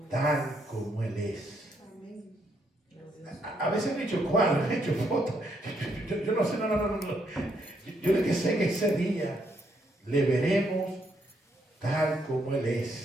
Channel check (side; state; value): both; normal; correlation 0.74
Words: tal como Él es. Amén. A veces me he hecho cuadros, he hecho fotos. Yo no sé, no. Yo lo que sé que ese día le veremos tal como Él